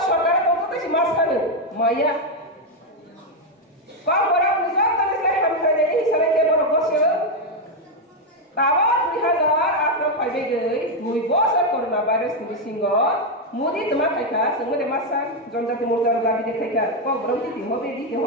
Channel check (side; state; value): both; normal; correlation 0.03